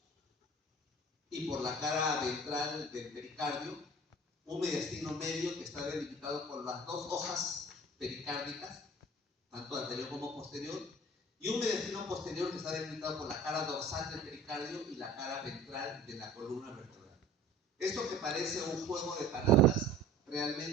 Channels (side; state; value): both; normal; correlation 0.45